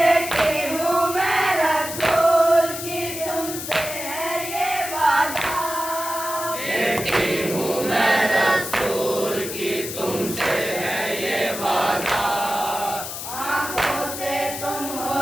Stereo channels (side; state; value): left; noise; hiss, 7 dB below the sound